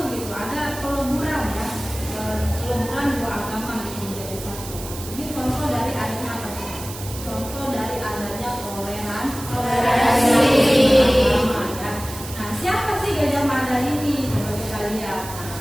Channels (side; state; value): right; noise; hiss, 12 dB below the sound